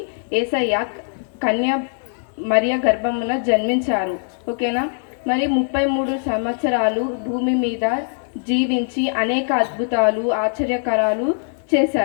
యేసయ్య కన్య మరియ గర్భమున జన్మించారు, ఓకేనా? మరి 33 సంవత్సరాలు భూమి మీద జీవించి అనేక అద్భుతాలు, ఆశ్చర్యకరాలు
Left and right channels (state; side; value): silent; right; digital silence